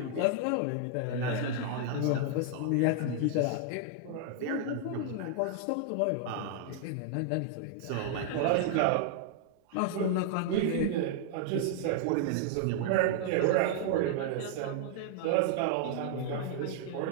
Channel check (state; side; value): different; both; correlation -0.01